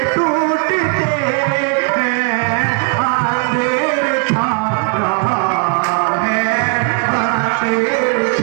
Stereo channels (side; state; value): left; quieter; 34.1 dB